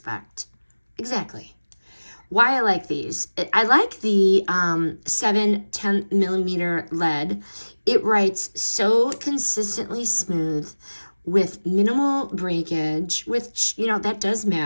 Exactly. Why I like these. I like the 7/10 millimeter lead. It writes so consistently smooth with minimal breakage, which, you know, that does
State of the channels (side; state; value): both; inverted; correlation -1.00